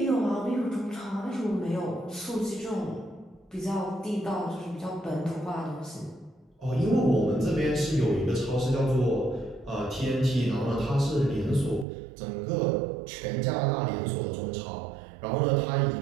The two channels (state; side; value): drops out; left; at 11.9 s